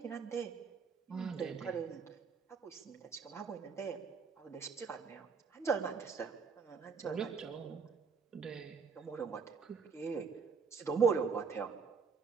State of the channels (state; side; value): quieter; left; 5.6 dB